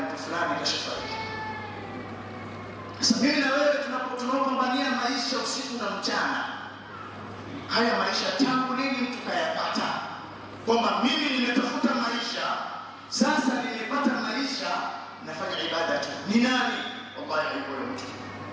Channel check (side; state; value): both; identical; correlation 1.00